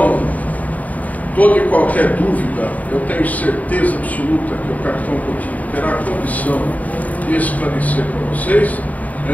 toda e qualquer dúvida, eu tenho certeza absoluta que o capitão Coutinho terá condição de esclarecer para vocês.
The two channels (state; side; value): late; right; 0.073 ms